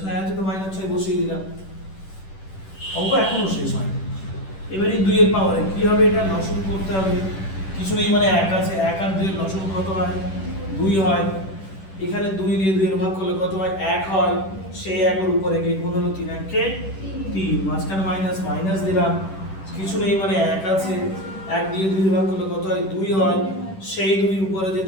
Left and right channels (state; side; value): late; right; 10 ms